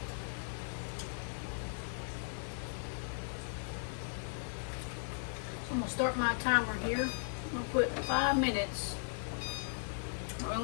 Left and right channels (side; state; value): right; silent; 53 dB below the other